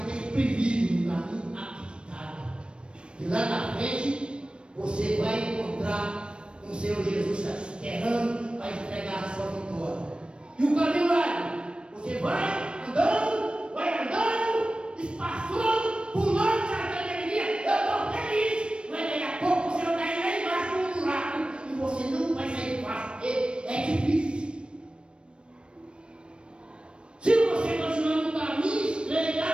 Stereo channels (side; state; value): left; late; 0.056 ms